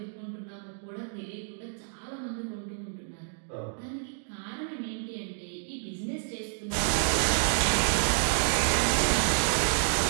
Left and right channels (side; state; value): left; silent; digital silence